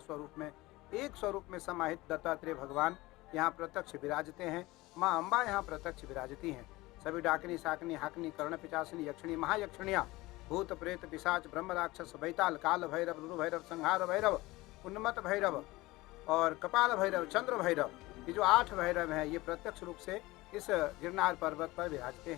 स्वरूप में, एक स्वरूप में समाहित दत्तात्रेय भगवान यहाँ प्रत्यक्ष विराजते हैं। माँ अम्बा यहाँ प्रत्यक्ष विराजती हैं। सभी डाकिनी, शाकिनी, हाकिनी, कर्ण, पिचासिनी, यक्षिणी, महायक्षिणियाँ, भूत प्रेत, पिशाच, ब्रह्म राक्षस, बैताल, काल भैरव, रुरु भैरव, संहार भैरव, उन्मत्त भैरव और कपाल भैरव, चंद्र भैरव, ये जो 8 भैरव हैं, ये प्रत्यक्ष रूप से इस गिरनार पर्वत पर विराजते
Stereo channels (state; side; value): quieter; right; 20.1 dB